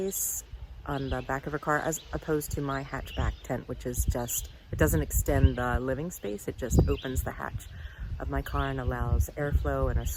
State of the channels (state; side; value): identical; both; correlation 1.00